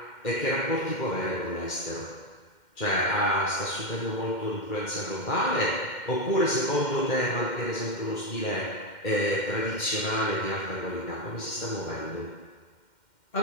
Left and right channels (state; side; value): late; right; 2.1 ms